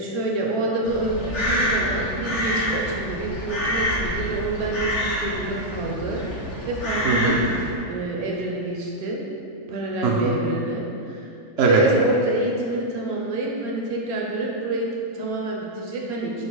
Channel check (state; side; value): late; right; 3.4 ms